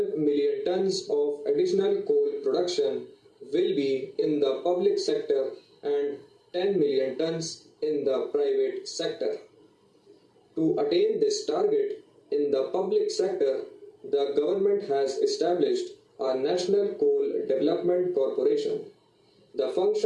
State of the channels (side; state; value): both; identical; correlation 1.00